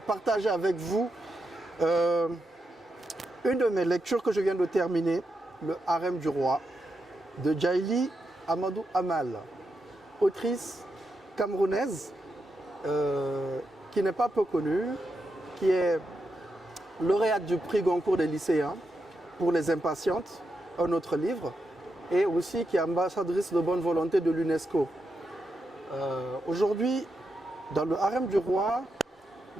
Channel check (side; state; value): both; normal; correlation 0.85